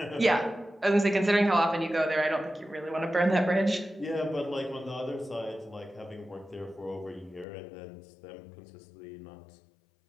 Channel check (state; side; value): drops out; right; at 7.5 s